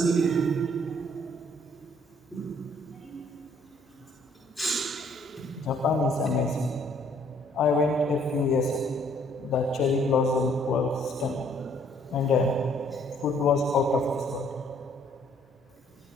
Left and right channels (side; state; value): both; normal; correlation 0.63